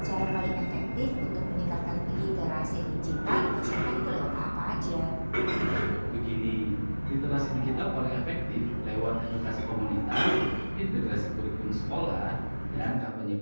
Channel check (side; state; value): both; inverted; correlation -1.00